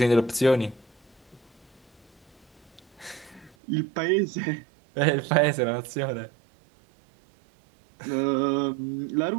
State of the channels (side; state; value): left; drops out; at 3.6 s